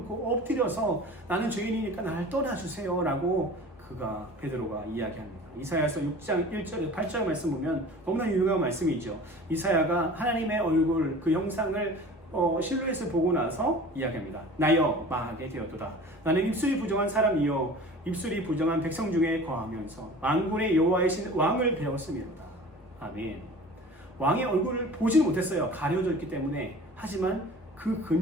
엎드려서 나는 죄인이니까 나를 떠나주세요 라고 베드로가 이야기합니다. 이사야서 6장 1절 8절 말씀 보면 너무나 유명한 말씀이죠. 이사야가 하나님의 얼굴 그 형상을 실루엣을 보고 나서 이야기합니다. 나여 망하게 되었도다. 나는 입술이 부정한 사람이요 입술이 부정한 백성 중에 거하면서 만군의 여호와이신 왕을 배웠음이로다. 아멘. 왕의 얼굴을 보지 못했어요. 가려져 있기 때문에. 하지만 그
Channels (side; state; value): both; normal; correlation 0.41